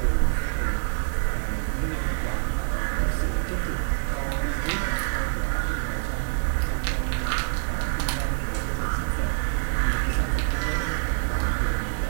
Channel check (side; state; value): left; silent; digital silence